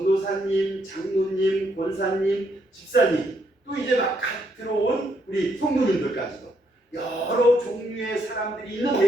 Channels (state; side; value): normal; both; correlation 0.74